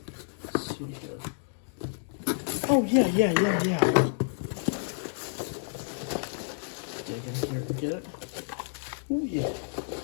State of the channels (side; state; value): right; silent; digital silence